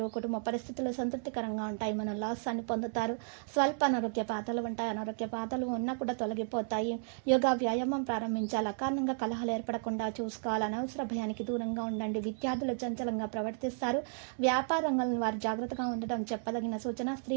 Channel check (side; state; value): left; silent; 56 dB below the other